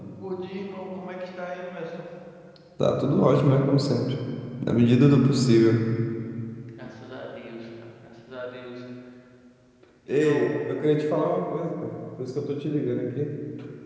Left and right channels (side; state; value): both; identical; correlation 1.00